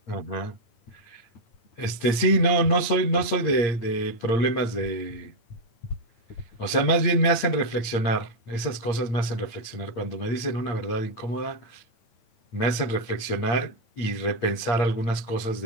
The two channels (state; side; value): late; right; 8.6 ms